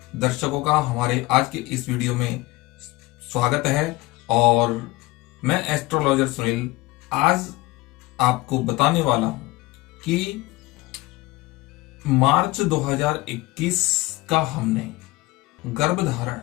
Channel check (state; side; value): quieter; right; 20.5 dB